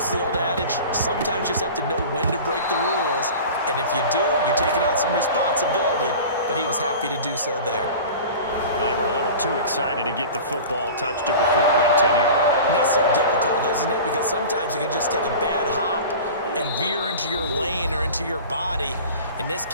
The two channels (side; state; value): both; inverted; correlation -0.37